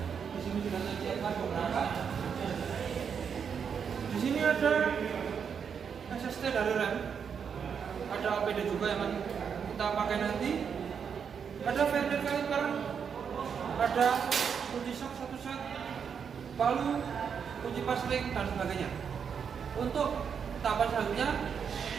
di sini sudah saya siapkan beberapa. Di sini ada SST dari rem, ada APD juga yang akan kita pakai nanti. Ada Vernier caliper, ada kunci sok satu set, palu, kunci pasling dan sebagainya. Untuk tahapan selanjutnya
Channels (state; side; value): quieter; left; 6.9 dB